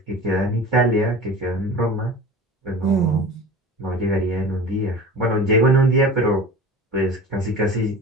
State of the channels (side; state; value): both; normal; correlation 0.36